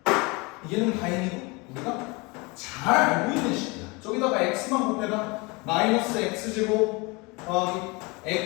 얘는 다행히도 우리가 잘 알고 있는 식이야. 저기다가 x만 곱해봐. 마이너스 x제곱 더하기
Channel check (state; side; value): quieter; right; 26.8 dB